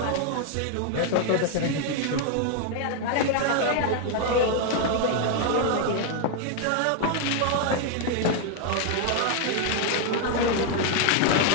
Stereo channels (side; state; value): both; different; correlation 0.00